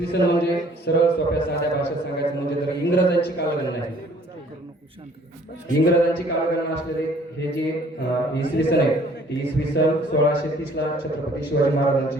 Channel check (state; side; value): normal; both; correlation 0.57